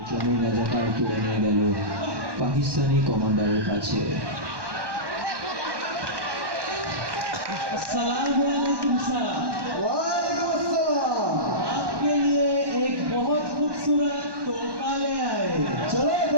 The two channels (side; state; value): left; late; 1.2 ms